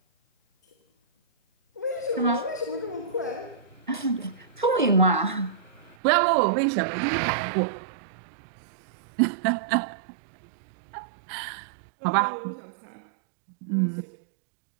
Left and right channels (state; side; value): drops out; left; at 6.0 s